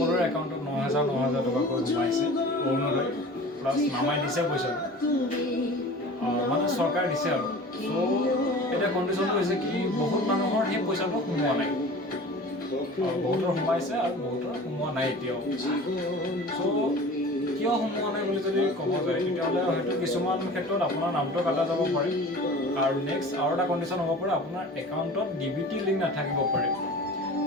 একাউণ্টত 9,000 টকাকৈ সোমাইছে। অৰুণোদয় প্লাছ নামাই দিছে পইচা, মানে চৰকাৰে দিছে আৰু। এতিয়া কণ্ডিশ্যনটো হৈছে কি, বহুত মানুহৰ সেই পইচাটো সোমোৱা নাই, বহুতৰ সোমাইছে আৰু বহুতৰ সোমোৱা নাই এতিয়াও। কিয় সোমোৱা নাই বুলি যদি ক'ব যায়, তেতিয়াহ'লে হয়তো কিছুমান ক্ষেত্ৰত আপোনাৰ নামটো কাটা যাব পাৰে, আৰু নেক্সট আৰু এটা কণ্ডিশ্যন হ'ব পাৰে, আপোনাৰ একাউণ্টত DBT লিংক নাথাকিব পাৰে।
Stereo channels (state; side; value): normal; both; correlation 0.40